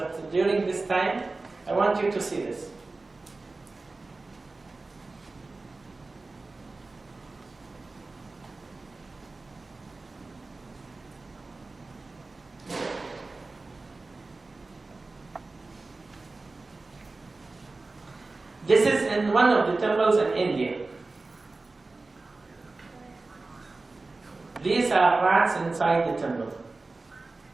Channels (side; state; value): left; quieter; 3.4 dB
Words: during this time, I want you to see this. This is in one of the temples in India. These are rats inside the temple.